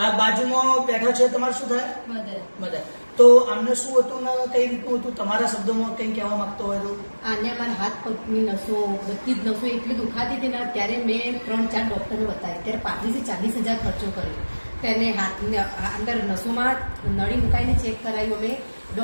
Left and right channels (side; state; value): both; inverted; correlation -1.00